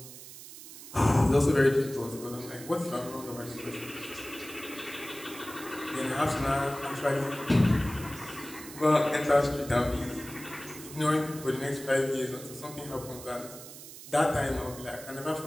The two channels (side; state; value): right; noise; hiss, 14 dB below the sound